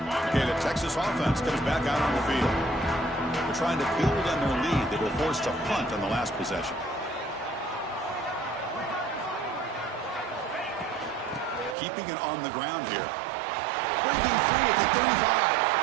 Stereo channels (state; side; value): drops out; left; at 11.8 s